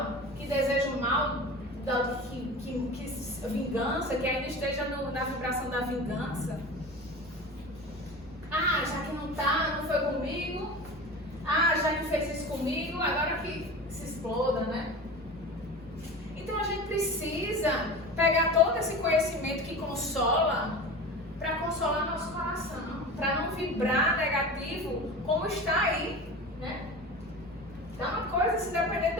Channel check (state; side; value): normal; both; correlation 0.32